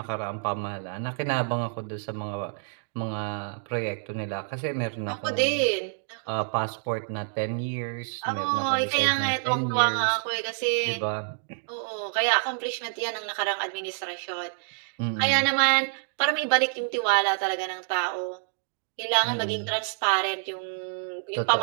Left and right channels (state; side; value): silent; left; digital silence